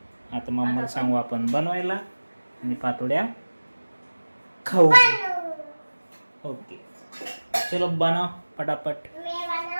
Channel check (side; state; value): both; inverted; correlation -1.00